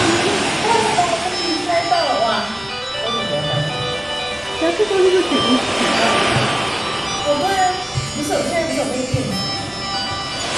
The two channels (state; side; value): noise; left; rumble, 25 dB below the sound